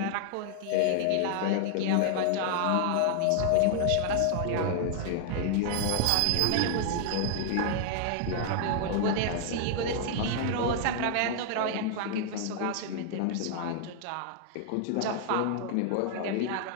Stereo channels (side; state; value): both; different; correlation 0.00